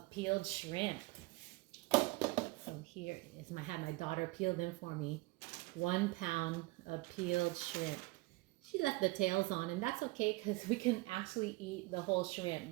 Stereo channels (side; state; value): left; quieter; 22.5 dB